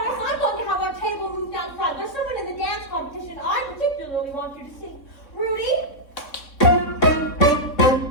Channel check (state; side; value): late; right; 3.6 ms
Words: I'm going to have our table moved out front. There's someone in the dance competition I particularly want you to see. Rudy?